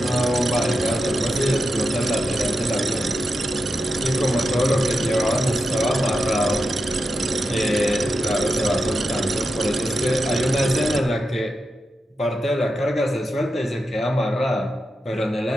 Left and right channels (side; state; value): both; normal; correlation 0.89